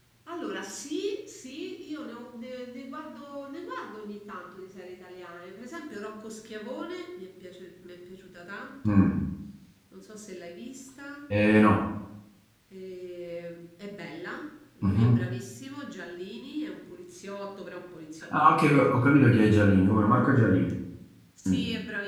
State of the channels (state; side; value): identical; both; correlation 1.00